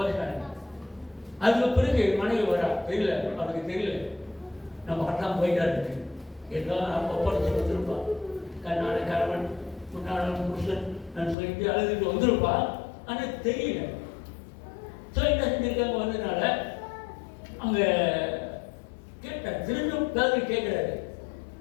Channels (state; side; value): drops out; right; at 11.4 s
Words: அதுக்கு பிறகு மனைவி வரா, தெரியல, அவனுக்கு தெரியல நம்ம கட்டாம போயிட்டா இருக்கு. ஏதோ ஒப்படைச்சு வந்துருப்பான், கண்ணான கணவன் முன்னாள் புருஷன் நான் சொல்லிட்டு அழுதுட்டு வந்திருப்பான். ஆனால் தெரியல. ஸோ என்ன செஞ்சிருக்காங்க வந்ததுனால அங்கே கேட்டார், திரும்பவும் பேரு கேட்குறாரு,